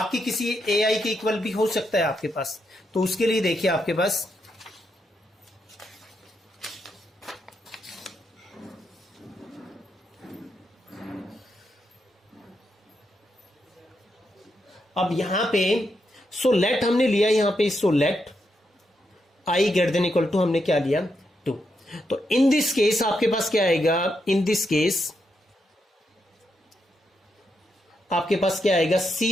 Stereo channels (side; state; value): both; normal; correlation 0.82